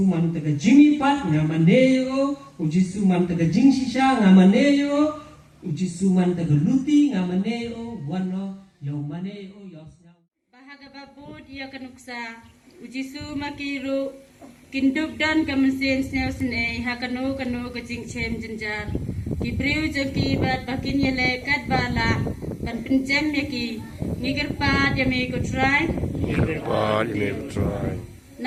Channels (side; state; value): both; identical; correlation 1.00